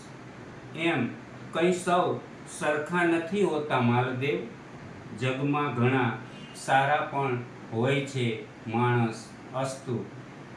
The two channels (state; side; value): identical; both; correlation 1.00